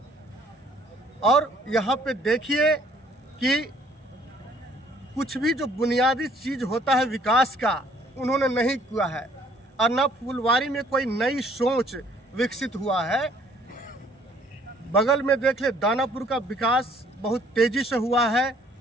और यहाँ पे देखिए कि कुछ भी जो बुनियादी चीज़ होता है विकास का, उन्होंने नहीं किया है। और न फुलवारी में कोई नई सोच विकसित हुआ है। बगल में देख ले, दानापुर का विकास बहुत तेज़ी से हुआ है।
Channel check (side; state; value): both; normal; correlation 0.60